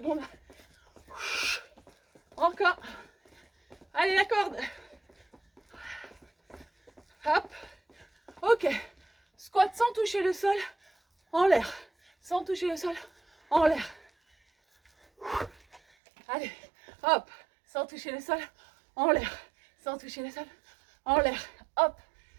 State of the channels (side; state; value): left; drops out; at 15.8 s